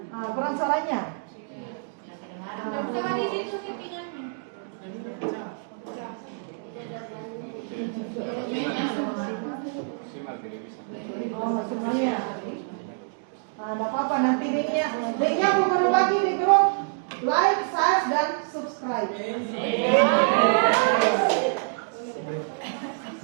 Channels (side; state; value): left; silent; digital silence